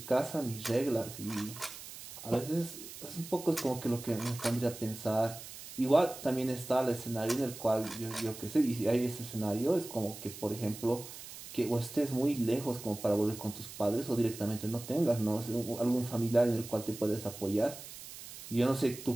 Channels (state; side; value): noise; right; hiss, 13 dB below the sound